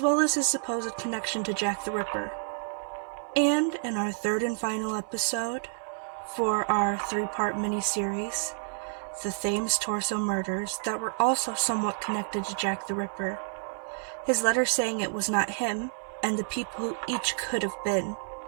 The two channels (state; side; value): silent; left; 58 dB below the other